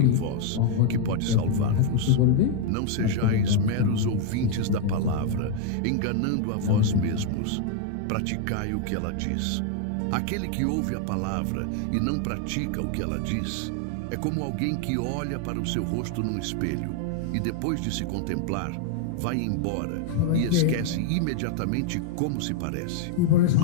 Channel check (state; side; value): different; both; correlation 0.00